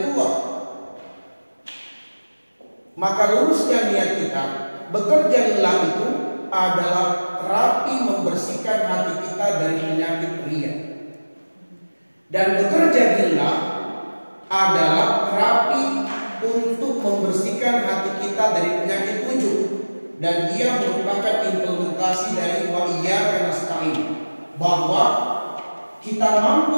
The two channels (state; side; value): inverted; both; correlation -1.00